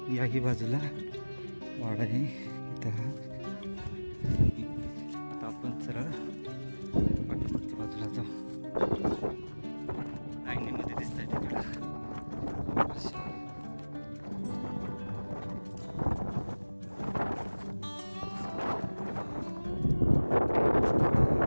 याही बाजूला वाडा आहे इथं. आता आपण सरळ पाठीमागच्या बाजूला जाऊ. लाईनीमध्ये दिसत आहे तिकडं.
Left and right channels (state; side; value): inverted; both; correlation -1.00